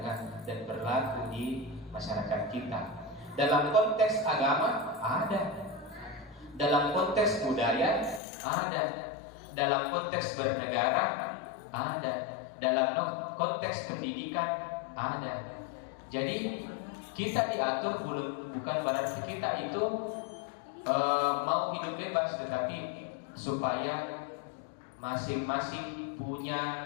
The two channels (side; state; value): right; drops out; at 8.2 s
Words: dan berlaku di masyarakat kita. Dalam konteks agama ada, dalam konteks budaya ada, dalam konteks bernegara ada, dalam konteks pendidikan ada. Jadi kita diatur bukan berarti kita itu mau hidup bebas, tetapi supaya masing-masing